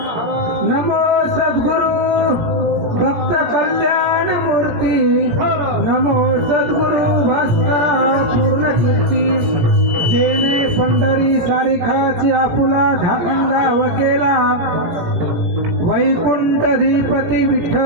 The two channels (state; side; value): late; left; 17 ms